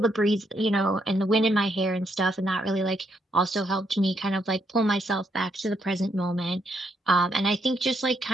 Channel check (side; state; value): both; normal; correlation 0.76